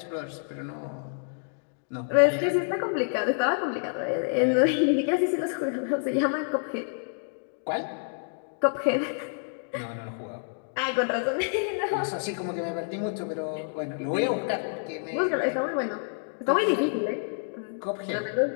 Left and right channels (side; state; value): right; silent; digital silence